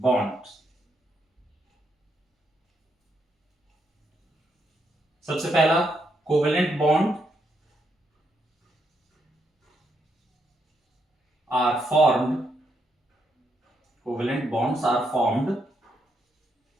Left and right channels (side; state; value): both; normal; correlation 0.78